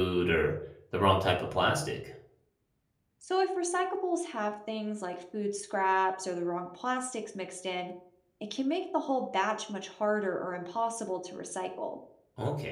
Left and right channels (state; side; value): identical; both; correlation 1.00